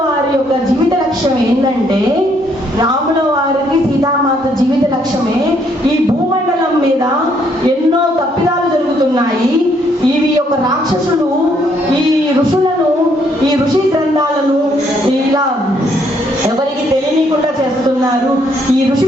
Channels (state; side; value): normal; both; correlation 0.70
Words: వారి యొక్క జీవిత లక్ష్యం ఏంటంటే, రాముల వారికి సీతామాత జీవిత లక్ష్యమే ఈ భూమండలం మీద ఎన్నో తప్పిదాలు జరుగుతున్నాయి. ఇవి యొక్క రాక్షసులు ఈ ఋషులను, ఈ ఋషి గ్రంథాలను ఇలా ఎవరికి తెలియకుండా చేస్తున్నారు, ఈ ఋషి